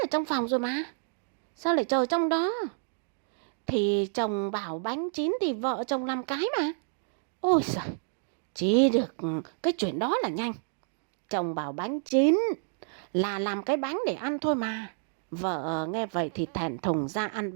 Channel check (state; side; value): silent; left; digital silence